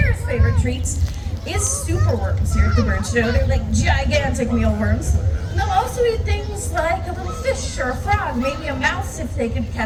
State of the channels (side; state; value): both; identical; correlation 1.00